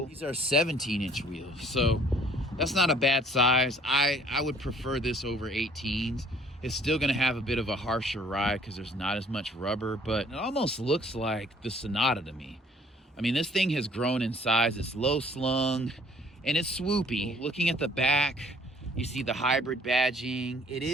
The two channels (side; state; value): both; normal; correlation 0.57